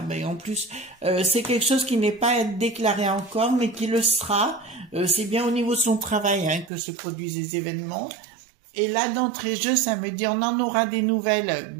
mais en plus, c'est quelque chose qui n'est pas déclaré encore, mais qui le sera. C'est bien au niveau de son travail hein, que se produisent les événements. Et là, d'entrée de jeu, ça me dit, on en aura des nouvelles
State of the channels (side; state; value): left; drops out; at 6.7 s